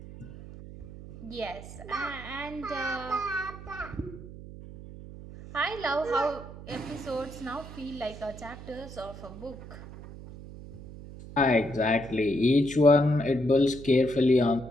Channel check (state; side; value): noise; right; hum, 14 dB below the sound